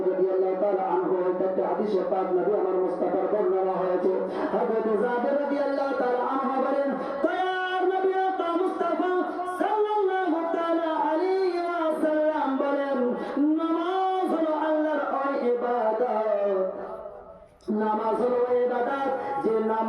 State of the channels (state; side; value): identical; both; correlation 1.00